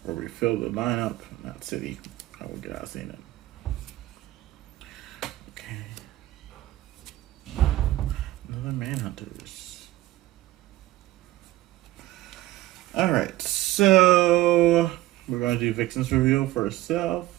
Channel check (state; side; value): quieter; left; 16.7 dB